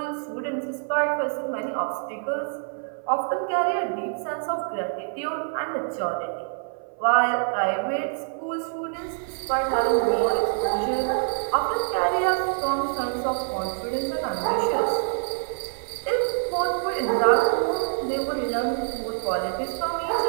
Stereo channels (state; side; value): silent; left; 58 dB below the other